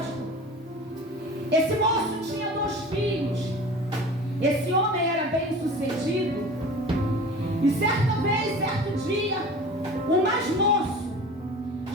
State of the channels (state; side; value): normal; both; correlation 0.39